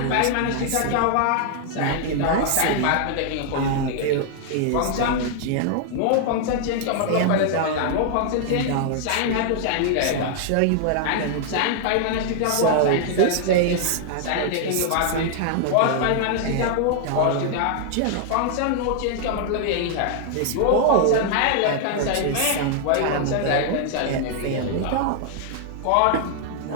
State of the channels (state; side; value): different; both; correlation 0.00